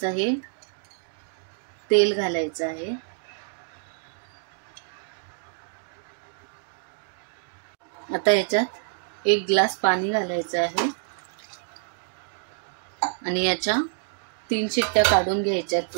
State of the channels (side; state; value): left; silent; digital silence